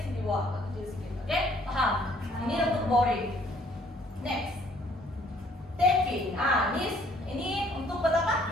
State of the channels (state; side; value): normal; both; correlation 0.62